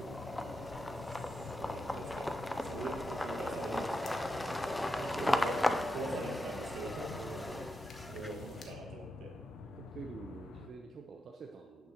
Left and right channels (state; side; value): normal; both; correlation 0.86